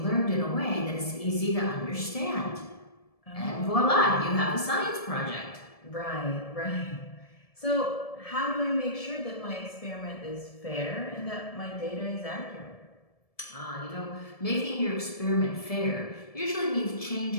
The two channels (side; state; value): right; late; 1.7 ms